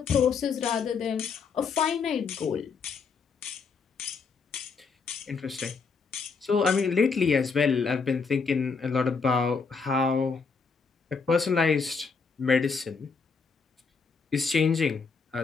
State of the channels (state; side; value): quieter; right; 5.1 dB